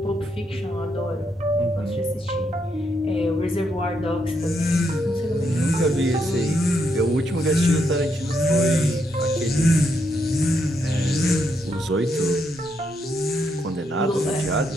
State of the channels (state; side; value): normal; both; correlation 0.78